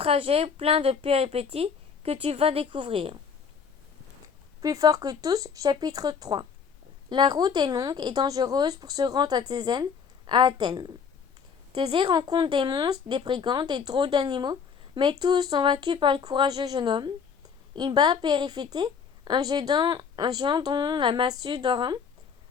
plein de péripéties que tu vas découvrir. Plus fort que tous, chapitre 3. La route est longue et dangereuse pour se rendre à Athènes. Thésée rencontre des monstres, des brigands, des drôles d'animaux, mais tous sont vaincus par le courageux jeune homme. Il bat Périphété, un géant dont la massue d'or,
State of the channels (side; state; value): right; quieter; 6.4 dB